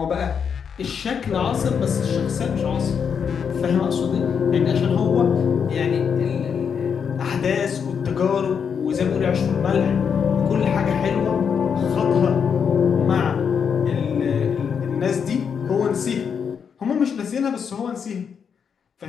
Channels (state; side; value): quieter; right; 6.9 dB